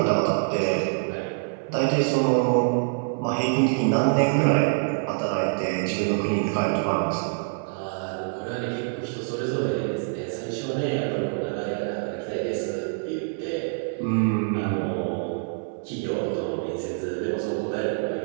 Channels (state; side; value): silent; left; 60 dB below the other